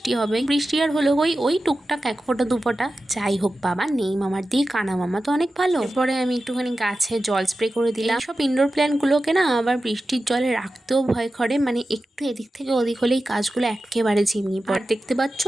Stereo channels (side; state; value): both; normal; correlation 0.93